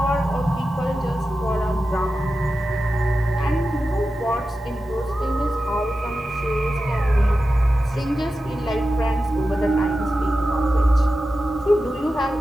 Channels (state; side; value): normal; both; correlation 0.92